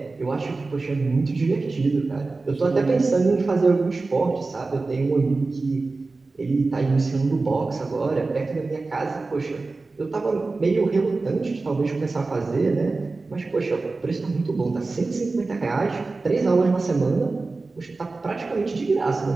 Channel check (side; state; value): left; quieter; 3.7 dB